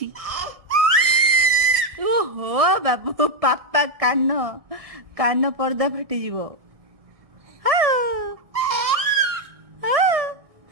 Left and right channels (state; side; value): late; left; 1.6 ms